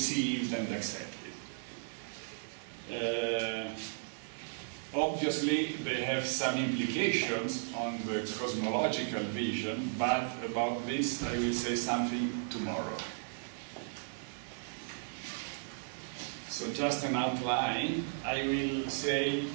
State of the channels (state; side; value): silent; left; digital silence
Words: and accepted. Obviously, they have some implications on the cosmological vision, but about this I will say something tomorrow. So just an outline, I will say,